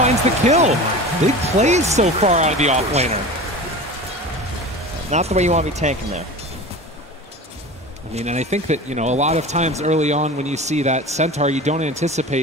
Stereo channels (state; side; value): normal; both; correlation 0.33